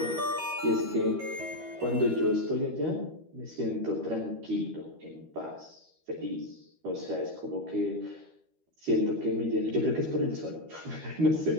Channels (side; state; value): left; late; 13 ms